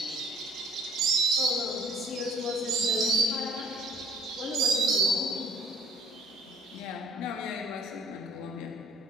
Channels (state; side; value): normal; both; correlation 0.55